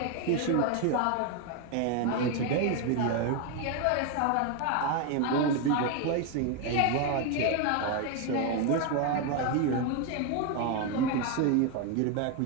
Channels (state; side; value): different; both; correlation 0.01